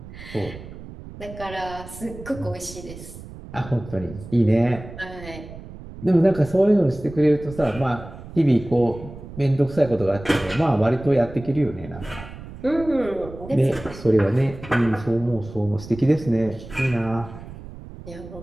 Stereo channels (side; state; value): right; noise; rumble, 14 dB below the sound